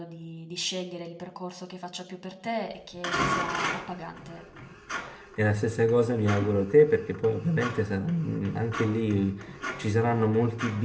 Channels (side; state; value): both; identical; correlation 1.00